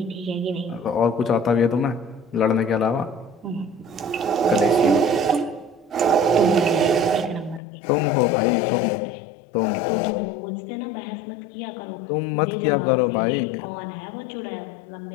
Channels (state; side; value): drops out; right; at 7.6 s